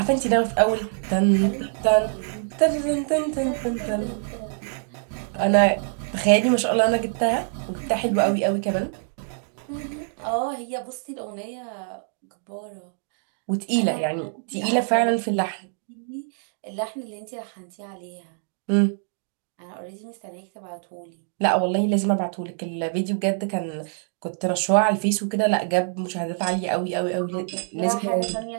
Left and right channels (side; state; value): left; silent; digital silence